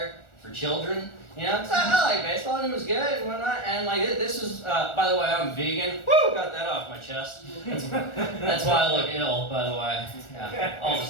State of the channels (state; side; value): late; right; 1.4 ms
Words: for children. You know, 'cause I like baseball and it was good and whatnot. And like this was, by the way, I'm vegan. Woo, got that off my chest. That's why I look ill, by the way. Yeah, all the